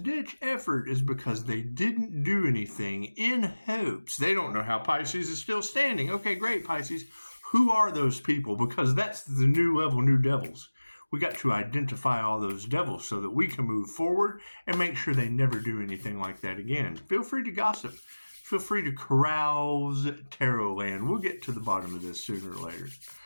ditch effort is because they didn't do anything in hopes. They don't know how Pisces is still standing. Okay, great, Pisces. Who are those people? Because that's the new level, new devils. We got to identify all those devils so that we can move forward and make sure they never do anything like that again. Feel free to gossip. Feel free to carouse tarot land. We'll get to the bottom of this sooner or later.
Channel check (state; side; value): inverted; both; correlation -1.00